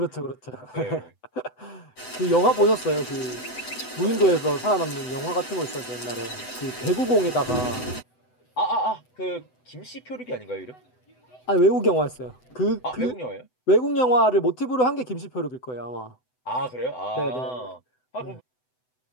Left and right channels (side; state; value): right; late; 7.9 ms